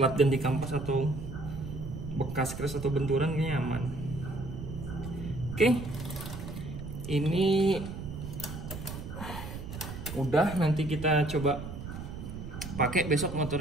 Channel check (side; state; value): right; noise; rumble, 9 dB below the sound